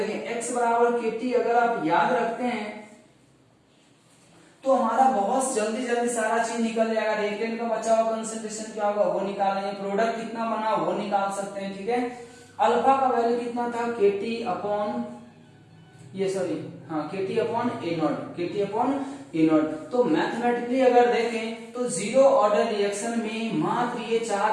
x बराबर के टी अगर आप याद रखते हैं तो हमारा बहुत जल्दी सारा चीज निकल जाएगा। रिएक्टेंट का बचा हुआ कंसंट्रेशन क्या होगा वो निकाल लेंगे, प्रोडक्ट कितना बना वो निकाल सकते हैं, ठीक है। अल्फा का वैल्यू कितना था? के टी अपॉन ये सॉरी हाँ KT upon A not, KT upon A not. तो मैथमेटिकली अगर देखें तो जीरो ऑर्डर रिएक्शन में मात्र ये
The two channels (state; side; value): identical; both; correlation 1.00